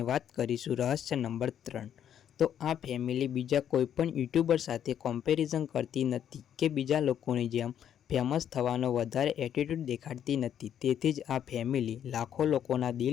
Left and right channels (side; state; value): right; quieter; 9.6 dB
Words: વાત કરીશું રહસ્ય નંબર 3। તો આ ફેમિલી બીજા કોઈ પણ યુટ્યુબર સાથે કમ્પેરિઝન કરતી નથી કે બીજા લોકોની જેમ ફેમસ થવાનો વધારે એટીટ્યૂડ દેખાડતી નથી, તેથી જ આ ફેમિલી લાખો લોકોના